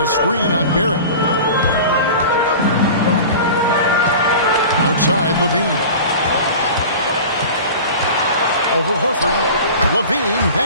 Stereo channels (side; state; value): both; inverted; correlation -0.36